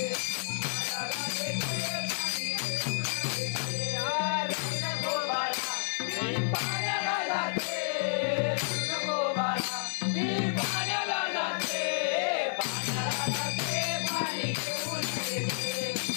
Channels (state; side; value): silent; right; digital silence